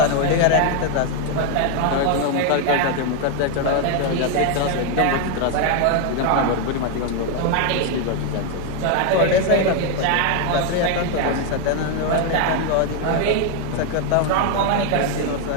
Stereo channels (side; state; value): both; different; correlation 0.01